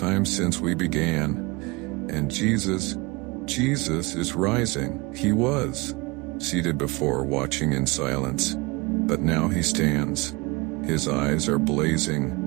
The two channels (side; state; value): left; quieter; 25.2 dB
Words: since we began. And Jesus is rising. He was seated before, watching in silence. But now he stands. His eyes are